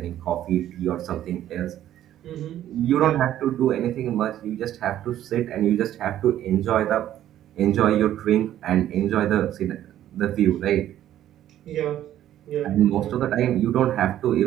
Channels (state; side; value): quieter; left; 12.1 dB